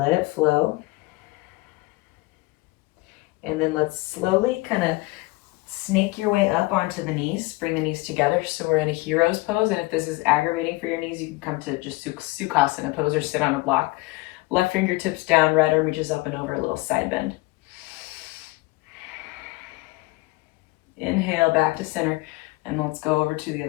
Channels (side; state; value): right; quieter; 22.2 dB